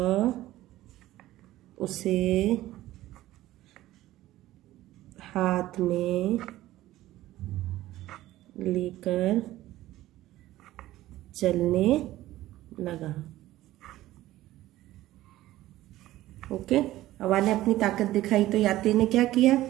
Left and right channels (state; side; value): quieter; left; 15.5 dB